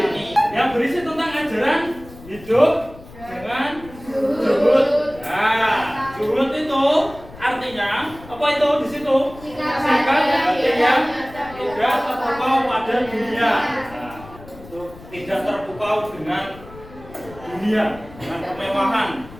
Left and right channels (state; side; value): noise; left; rumble, 19 dB below the sound